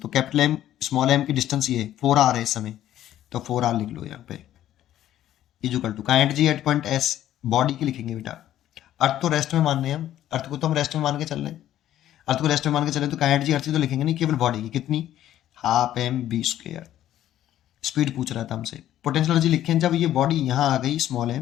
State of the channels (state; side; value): quieter; right; 12.4 dB